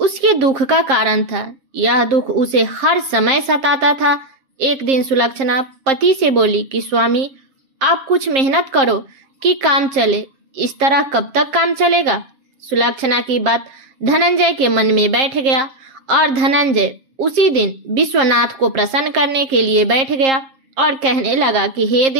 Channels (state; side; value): late; left; 7.5 ms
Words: दुख का कारण था। यह दुख उसे हर समय सताता था। एक दिन सुलक्षणा पति से बोली कि स्वामी, आप कुछ मेहनत करो कि काम चले। इस तरह कब तक काम चलेगा? सुलक्षणा की बात धनंजय के मन में बैठ गया और धनंजय उसी दिन विश्वनाथ को प्रसन्न करने के लिए बैठ गया और कहने लगा कि हे